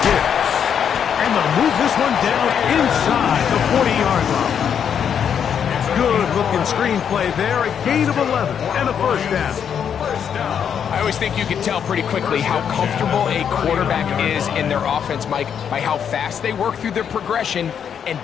Gibbs. And they'll move this one down inside the 40-yard line. Good-looking screen play there, a gain of 11 and a first down. I always think you can tell pretty quickly how comfortable a quarterback is in their offense, Mike, by how fast they work through their progression and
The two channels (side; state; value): right; quieter; 8.0 dB